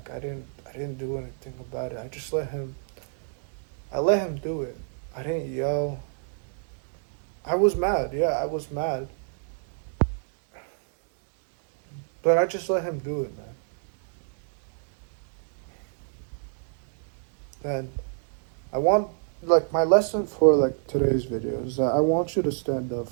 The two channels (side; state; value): left; silent; digital silence